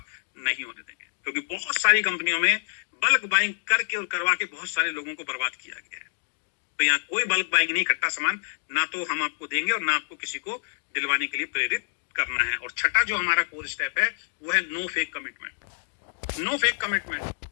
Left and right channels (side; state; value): right; silent; digital silence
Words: नहीं होने देंगे। क्योंकि बहुत सारी कंपनियों में बल्क बाइंग करके और करवा के बहुत सारे लोगों को बर्बाद किया गया है। तो यहाँ कोई बल्क बाइंग नहीं, इकट्ठा सामान ना तो हम आपको देंगे और ना आपको किसी को दिलवाने के लिए प्रेरित करना है। और छठा जो हमारा कोर स्टेप है, वो है no fake commitment. No fake commitment.